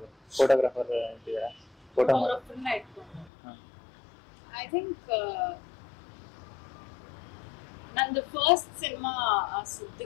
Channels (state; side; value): drops out; right; at 3.3 s